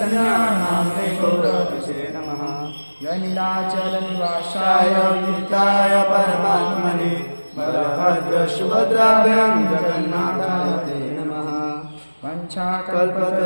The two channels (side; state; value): both; inverted; correlation -1.00